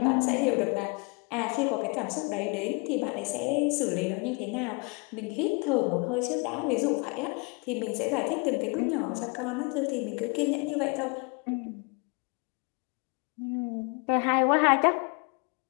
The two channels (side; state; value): right; quieter; 31.4 dB